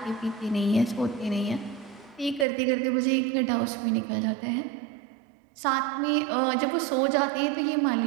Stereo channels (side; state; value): left; drops out; at 2.5 s